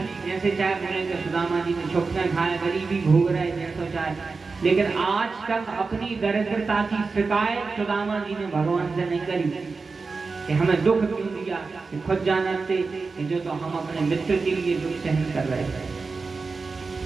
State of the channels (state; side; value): quieter; left; 4.3 dB